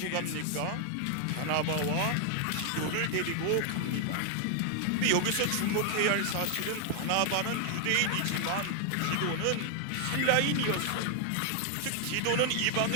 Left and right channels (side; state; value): both; different; correlation 0.00